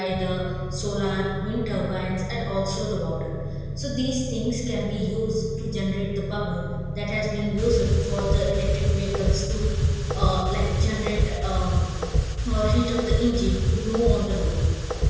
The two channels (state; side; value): identical; both; correlation 1.00